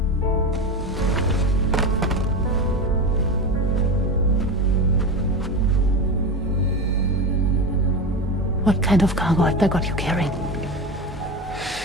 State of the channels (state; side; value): normal; both; correlation 0.22